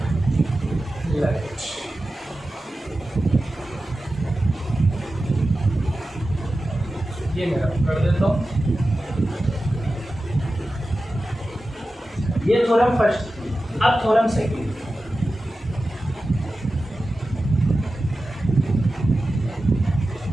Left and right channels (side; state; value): both; normal; correlation 0.94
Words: Right. ये मेरा कर देता हूँ। ये थ्योरम फर्स्ट, अब थ्योरम सेकंड।